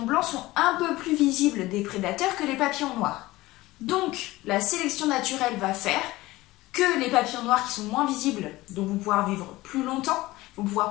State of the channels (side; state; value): right; quieter; 18.7 dB